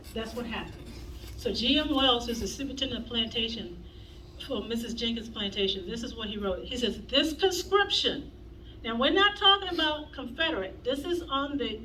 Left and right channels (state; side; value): identical; both; correlation 1.00